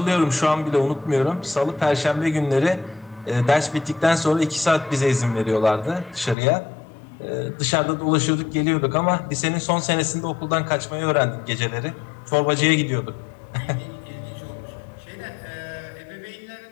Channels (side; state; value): right; drops out; at 6.4 s